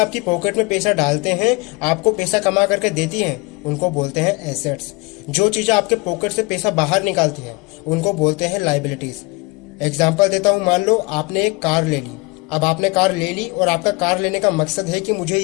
पॉकेट में पैसा डालते हैं, आपको पैसा कमा करके देती हैं, उनको बोलते हैं एसेट्स। जो चीजें आपके पॉकेट से पैसा बाहर निकालती हैं, उनको बोलते हैं लायबिलिटीज। एग्जाम्पल देता हूँ, मान लो आपने एक कार ले ली। अब आपने कार ले ली और आपका कार लेने का मकसद है कि मुझे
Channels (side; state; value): right; quieter; 26.7 dB